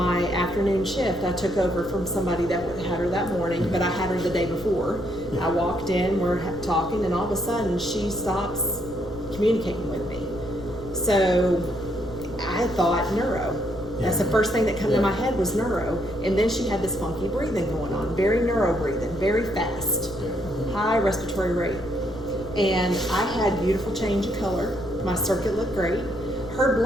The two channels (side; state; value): left; noise; rumble, 16 dB below the sound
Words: afternoon shift, I took over from somebody that had her that morning, but I had her the day before. I walked in, we're talking, and all of a sudden she stops communicating with me. So I thought neuro. That's the first thing that came to my head was neuro. And then she had this funky breathing going on, very neuro breathing, very fast, high respiratory rate. And I had beautiful change of color. My circuit looked great. Her